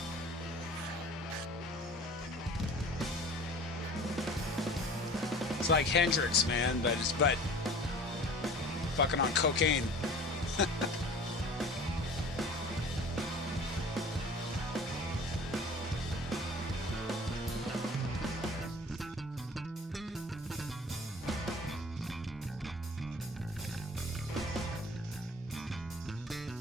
It's like Hendrix, man, but fucking on cocaine.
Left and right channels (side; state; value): both; normal; correlation 0.44